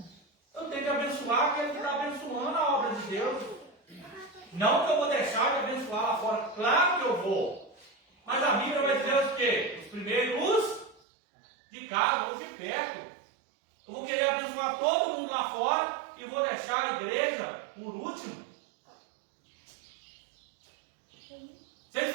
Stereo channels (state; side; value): drops out; left; at 11.0 s